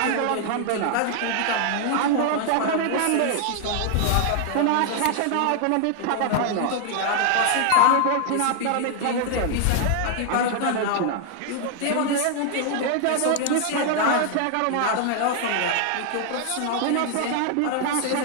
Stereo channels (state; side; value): different; both; correlation 0.00